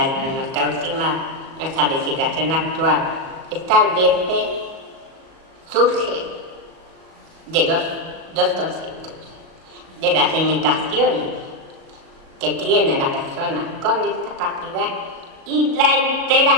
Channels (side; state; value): left; late; 37 ms